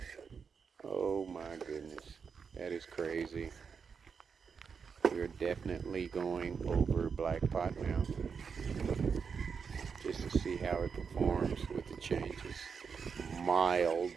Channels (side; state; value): left; quieter; 6.0 dB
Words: Oh my goodness, that is crazy. We're definitely going over Black Pot now, just to see how it performs with the changes.